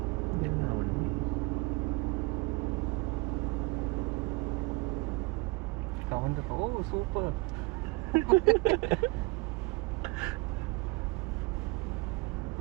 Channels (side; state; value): left; quieter; 26.7 dB